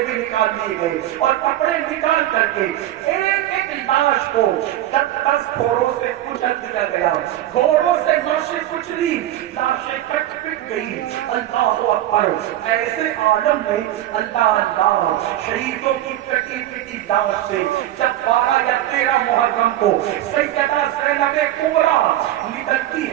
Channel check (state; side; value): quieter; left; 13.5 dB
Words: بھی نکال لیے گئے اور کپڑے نکال کر کے ایک ایک لاش کو 10 گھوڑوں سے کچل دیا گیا، گھوڑوں سے لاشیں کچلی، لاشیں کٹ پٹ گئی۔ اللہ اکبر۔ ایسے عالم میں اللہ شہیدوں کی کٹی پٹی لاش سے جب 12 یا 13 محرم کو سیدہ زینب کبریٰ نکلتی